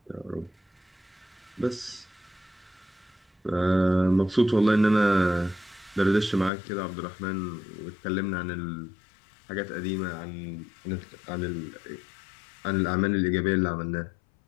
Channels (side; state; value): right; drops out; at 6.5 s